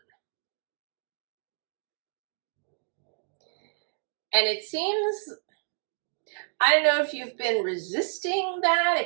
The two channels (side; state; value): left; silent; digital silence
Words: And it seems, I don't know if you've been resisting that,